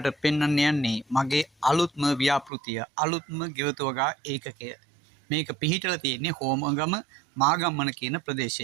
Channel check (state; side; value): drops out; left; at 2.5 s